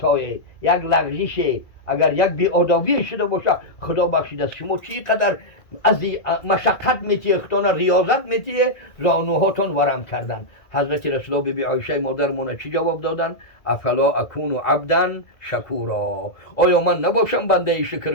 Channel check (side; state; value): right; late; 1.9 ms